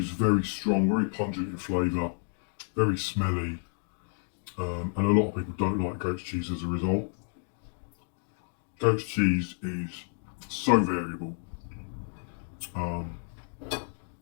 very strong, very pungent in flavour, very smelly, and a lot of people don't like goat's cheese as a result. Goat's cheese is so variable.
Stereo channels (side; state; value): right; silent; 58 dB below the other